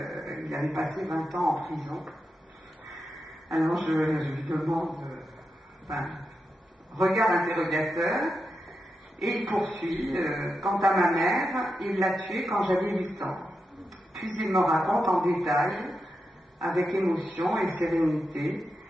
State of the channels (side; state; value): both; normal; correlation 0.88